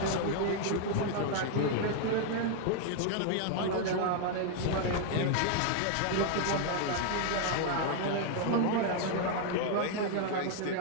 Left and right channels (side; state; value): both; different; correlation 0.00